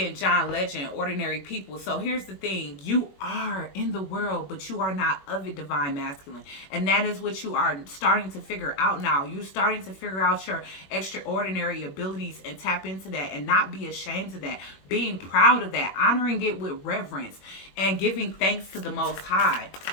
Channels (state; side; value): late; right; 21 ms